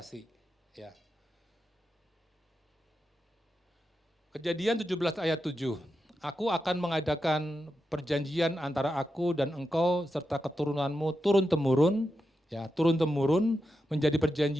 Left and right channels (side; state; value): both; normal; correlation 0.88